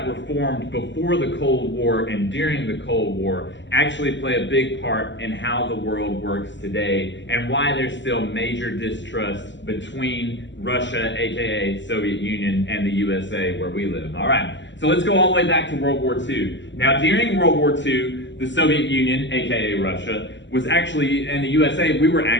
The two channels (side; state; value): right; late; 0.53 ms